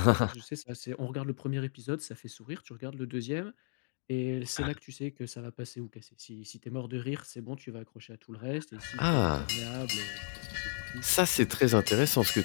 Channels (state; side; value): silent; right; digital silence